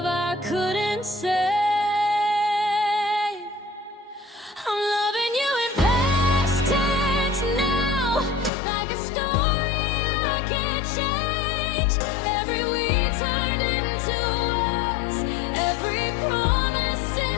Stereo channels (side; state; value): right; drops out; at 8.5 s